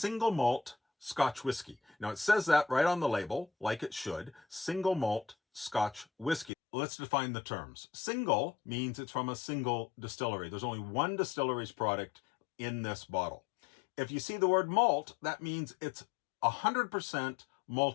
malt Scotch whiskey. Now, it says that right on the label, like it should, single malt Scotch whiskey. Let's define the terms. Single means it's from a single distillery. There's only one distillery's product in this bottle. If you see the word malt, that means it's 100%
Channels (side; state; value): right; drops out; at 6.5 s